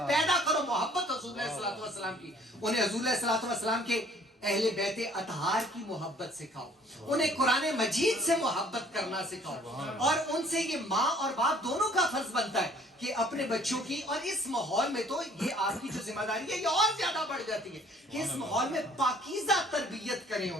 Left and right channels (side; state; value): both; normal; correlation 0.57